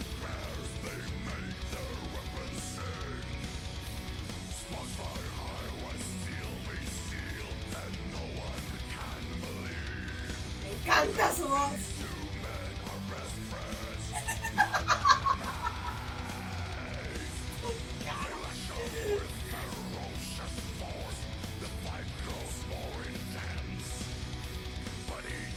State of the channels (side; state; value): both; identical; correlation 1.00